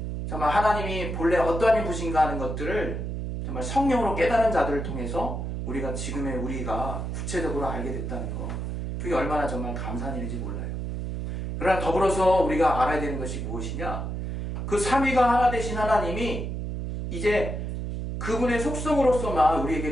하나님이 본래 어떠한 분이신가 하는 것들을 정말 성령으로 깨달은 자들을 통해서 우리가 지금의 우리가 구체적으로 알게 됐다는 거, 그게 얼마나 정말 감사한 일인지 몰라요. 그러나 더불어서 우리가 알아야 되는 것이 무엇이냐? 그 삼위가 하나 되신 하나님이 이제 그분의 속성으로서만 우리에게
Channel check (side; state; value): right; noise; hum, 4 dB below the sound